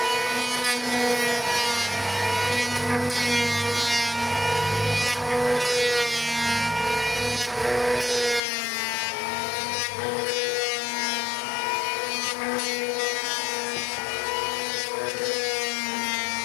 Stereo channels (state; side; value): drops out; right; at 8.4 s